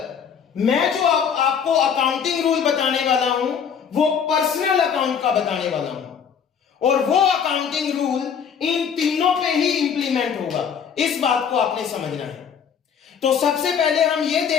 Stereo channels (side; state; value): right; quieter; 7.3 dB